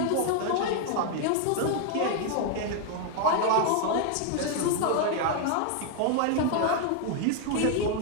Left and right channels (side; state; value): both; different; correlation 0.00